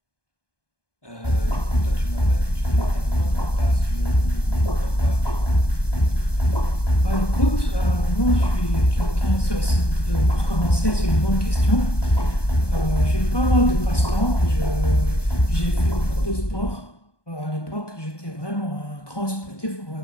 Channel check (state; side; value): late; right; 1.2 ms